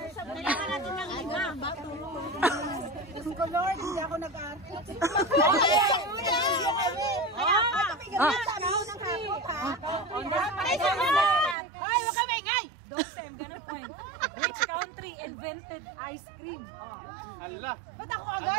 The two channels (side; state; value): left; drops out; at 11.6 s